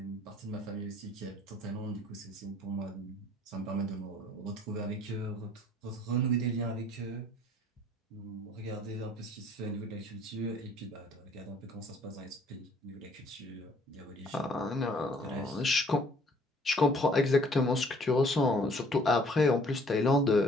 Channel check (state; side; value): normal; both; correlation 0.58